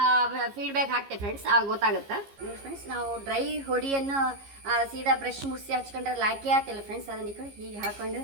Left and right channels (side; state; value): left; late; 15 ms